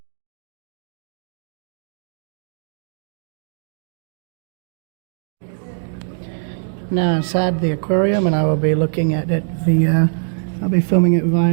Now inside the aquarium, and I will be looking at it via, I'll be filming it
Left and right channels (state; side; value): silent; left; digital silence